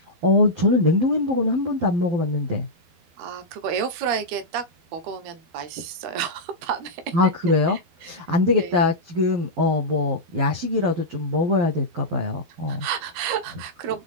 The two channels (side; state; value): left; late; 13 ms